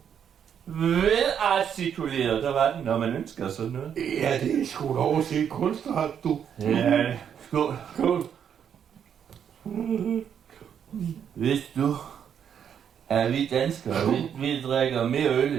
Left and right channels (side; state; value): left; quieter; 8.3 dB